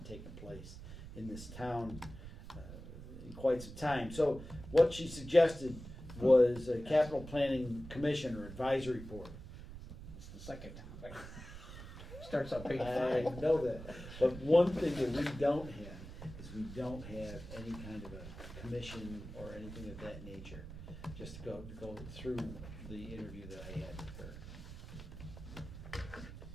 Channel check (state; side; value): noise; right; rumble, 12 dB below the sound